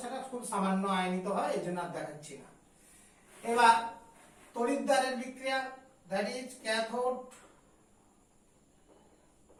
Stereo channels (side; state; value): both; identical; correlation 1.00